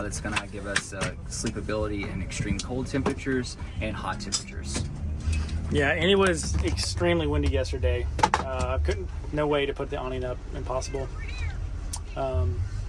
going to give us sleepability in extreme cold temperatures and hot temperatures. Yeah, and it was extremely windy yesterday. No way to put the awning up. Impossible. And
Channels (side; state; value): both; identical; correlation 1.00